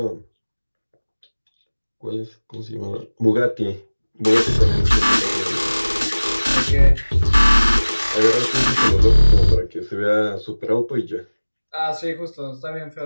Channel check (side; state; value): both; inverted; correlation -1.00